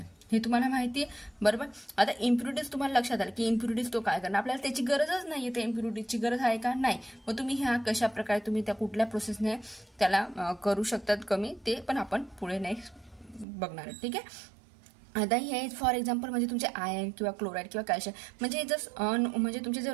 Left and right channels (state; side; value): drops out; left; at 13.5 s